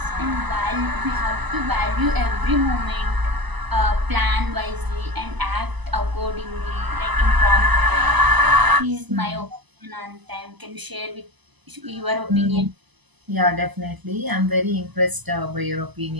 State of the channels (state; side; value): late; left; 1.0 ms